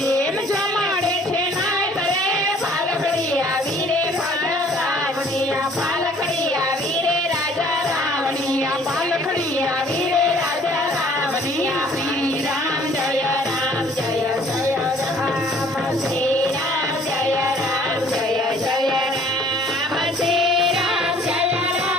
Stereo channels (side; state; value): both; normal; correlation 0.56